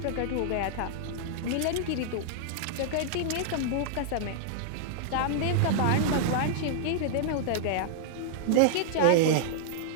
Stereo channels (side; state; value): both; different; correlation -0.01